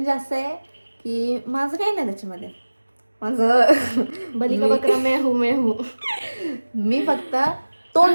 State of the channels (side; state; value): both; inverted; correlation -1.00